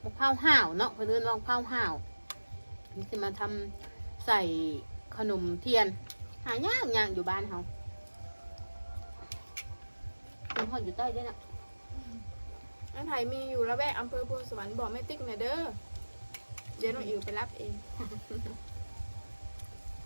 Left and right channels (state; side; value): inverted; both; correlation -1.00